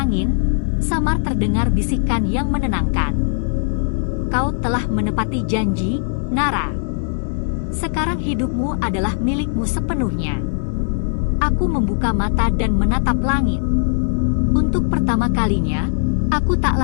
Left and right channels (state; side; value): silent; right; digital silence